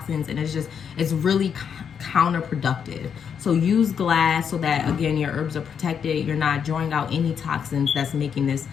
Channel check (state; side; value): quieter; right; 7.4 dB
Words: and it's really counterproductive. So use glass so that, again, your herbs are protected. You're not drawing out any toxins that's making this